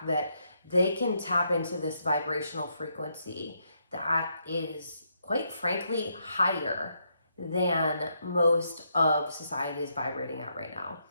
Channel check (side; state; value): both; inverted; correlation -0.77